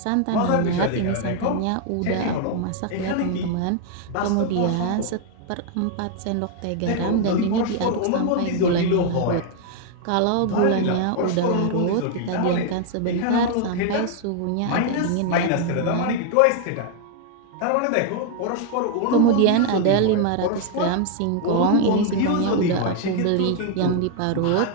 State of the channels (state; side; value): different; both; correlation 0.00